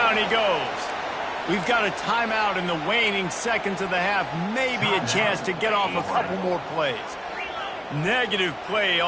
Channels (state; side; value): identical; both; correlation 1.00